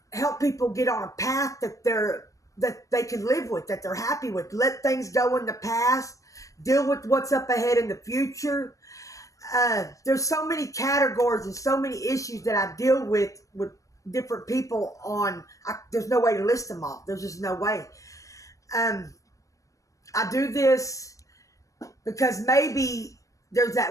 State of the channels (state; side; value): late; right; 0.16 ms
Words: help people get on a path that they can live with, that they're happy with. Let things go in the past, deal with what's up ahead in the future. There's so many categories and so many issues that I deal with different people on. There's no way to list them all. There's just no way. I do this because maybe there's